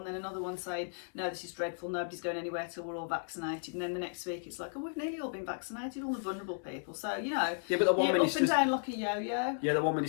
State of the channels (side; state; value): right; silent; 55 dB below the other